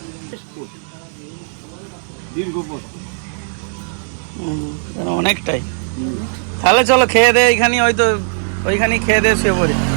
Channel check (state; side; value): silent; left; 64 dB below the other